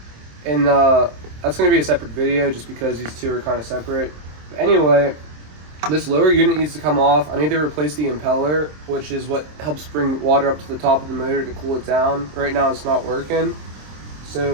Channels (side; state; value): left; late; 27 ms